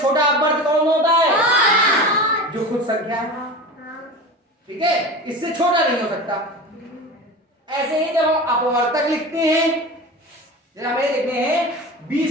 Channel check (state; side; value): normal; both; correlation 0.31